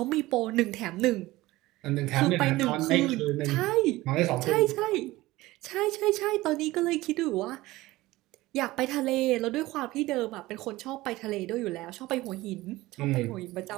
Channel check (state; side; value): quieter; left; 18.5 dB